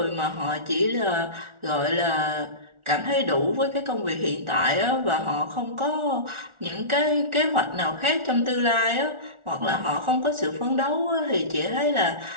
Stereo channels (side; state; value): left; late; 1.4 ms